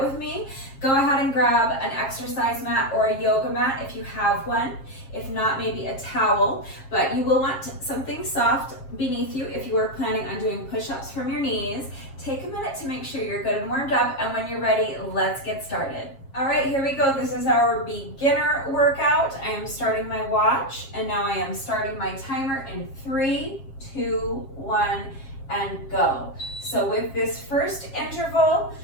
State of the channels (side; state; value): right; late; 7.4 ms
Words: with me, go ahead and grab an exercise mat or a yoga mat if you have one. If not, maybe a towel, but you will want something soft beneath you if you are planning on doing push-ups from your knees. Take a minute to make sure you're good and warmed up, and when you're ready, let's get started. All right, here we go. This is our beginner workout. I am starting my watch, and now I am starting my timer in 3, 2, 1, and go. So with this first interval,